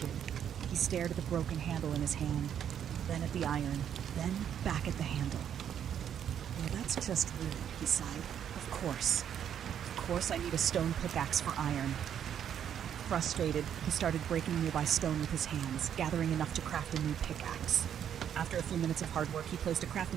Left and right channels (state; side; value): quieter; left; 9.2 dB